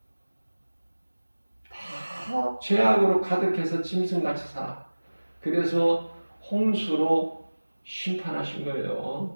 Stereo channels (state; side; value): inverted; both; correlation -1.00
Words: 다 죄악으로 가득해서 짐승같이 살아. 그래서 홍수로 심판하신